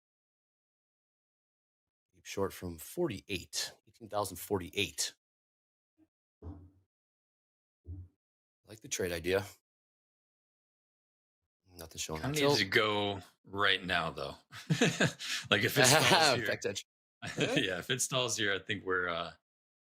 Keep short from 48. 18,048. I like the trade idea. Nothing showing. Kind of needs to go right now, though. Like if it stalls here, Back edge. yeah, if it stalls here, I think we're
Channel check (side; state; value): both; identical; correlation 1.00